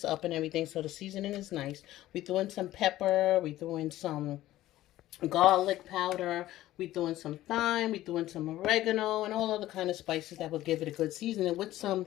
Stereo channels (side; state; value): right; quieter; 15.0 dB